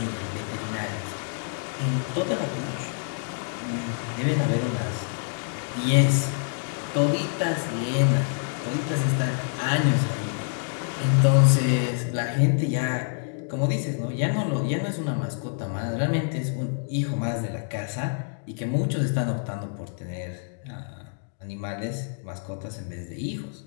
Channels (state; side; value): silent; right; digital silence